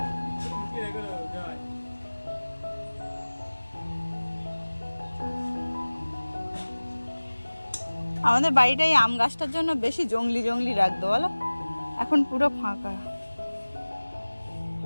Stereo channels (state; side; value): inverted; both; correlation -1.00